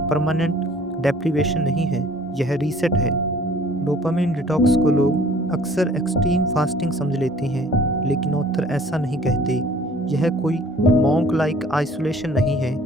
परमानेंट डेप्रिवेशन नहीं है, यह रीसेट है। डोपामिन डिटॉक्स को लोग अक्सर एक्सट्रीम फास्टिंग समझ लेते हैं, लेकिन ऑथर ऐसा नहीं कहते। यह कोई मॉन्क लाइक आइसोलेशन नहीं है,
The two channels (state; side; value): normal; both; correlation 0.53